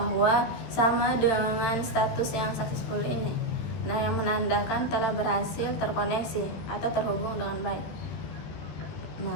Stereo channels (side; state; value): right; late; 13 ms